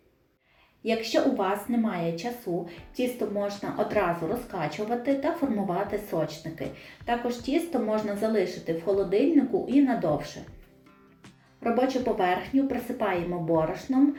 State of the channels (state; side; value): identical; both; correlation 1.00